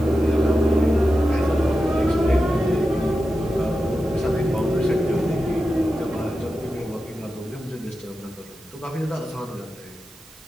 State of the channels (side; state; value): right; noise; hiss, 24 dB below the sound